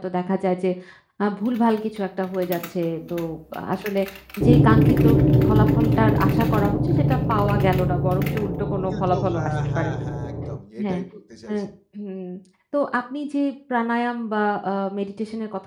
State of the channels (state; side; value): identical; both; correlation 1.00